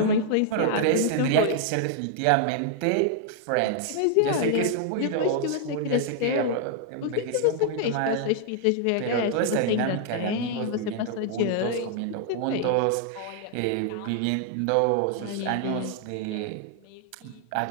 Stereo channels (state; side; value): different; both; correlation -0.01